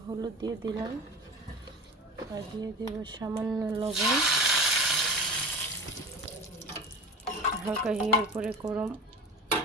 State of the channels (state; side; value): normal; both; correlation 0.32